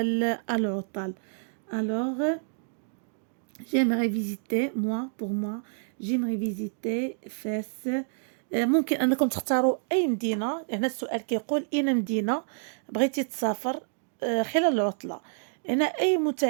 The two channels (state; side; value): silent; left; digital silence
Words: العطل? Alors, j'aimerais visiter, j'aimerais visiter Fès. ممكن أنكم تختاروا أي مدينة. هنا السؤال كيقول أين مدينة بغيتي تسافر خلال العطلة. هنا أي